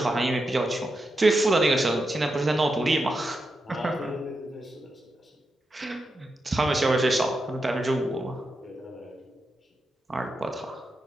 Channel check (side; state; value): both; normal; correlation 0.87